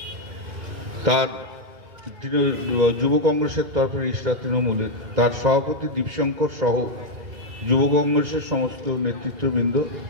তার যুব কংগ্রেসের তরফে রিষ্টা তৃণমূলের তার সভাপতি দীপশঙ্কর সহ যুব কংগ্রেসের সমস্ত নেতৃত্ববৃন্দ,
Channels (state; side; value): late; left; 2.0 ms